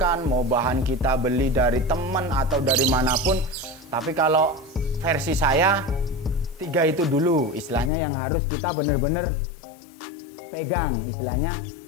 mau bahan kita beli dari teman atau dari manapun. Tapi kalau versi saya 3 itu dulu istilahnya yang harus kita bener-bener pegang. Istilahnya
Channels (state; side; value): drops out; right; at 7.9 s